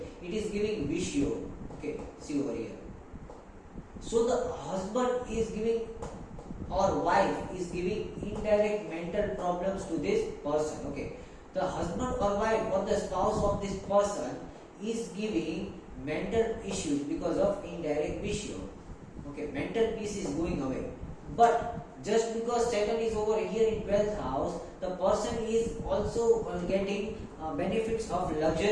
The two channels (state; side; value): identical; both; correlation 1.00